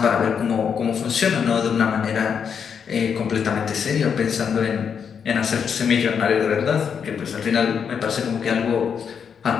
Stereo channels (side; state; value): right; quieter; 7.0 dB